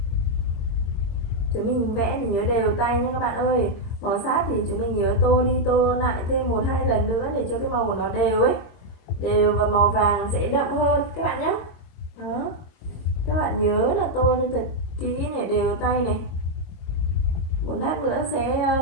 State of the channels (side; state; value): right; late; 22 ms